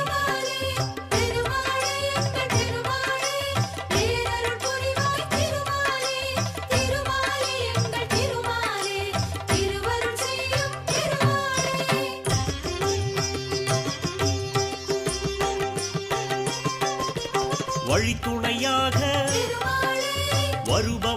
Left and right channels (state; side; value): identical; both; correlation 1.00